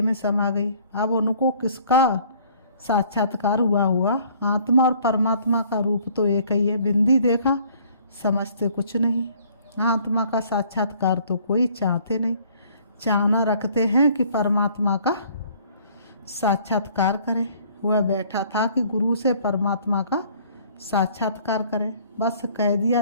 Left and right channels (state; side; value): inverted; both; correlation -0.58